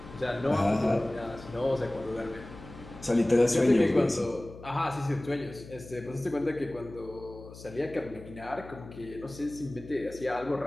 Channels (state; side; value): noise; left; hum, 16 dB below the sound